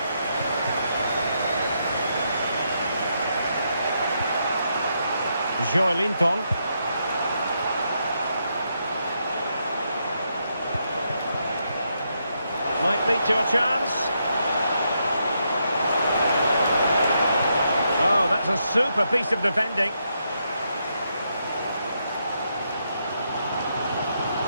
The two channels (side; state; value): both; inverted; correlation -0.80